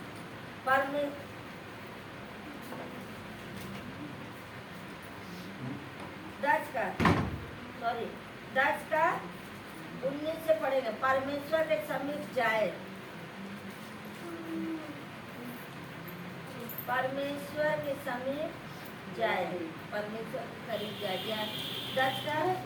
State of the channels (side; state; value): both; identical; correlation 1.00